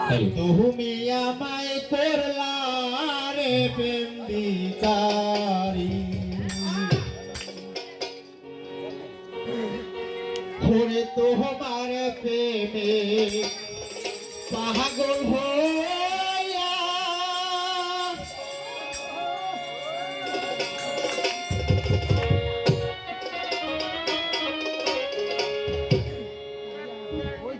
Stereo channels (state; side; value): identical; both; correlation 1.00